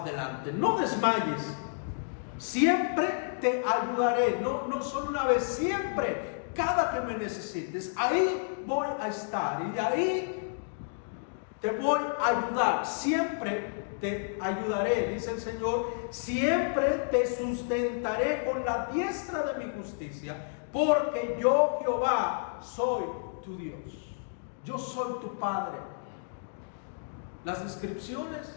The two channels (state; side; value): silent; right; digital silence